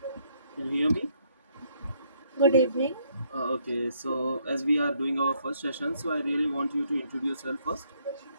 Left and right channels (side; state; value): both; inverted; correlation -0.69